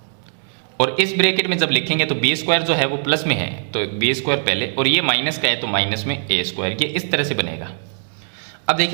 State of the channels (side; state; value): left; silent; digital silence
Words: और इस ब्रैकेट में जब लिखेंगे तो बी स्क्वायर जो है वो प्लस में है तो बी स्क्वायर पहले, और ये माइनस का है तो माइनस में ए स्क्वायर, ये इस तरह से बनेगा। अब